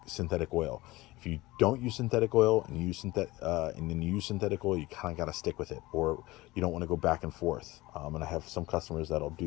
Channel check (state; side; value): quieter; right; 19.7 dB